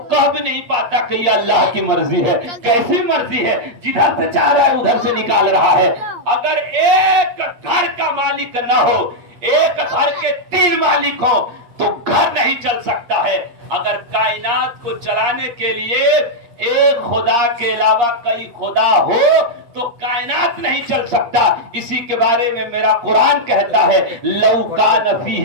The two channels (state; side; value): late; left; 8.5 ms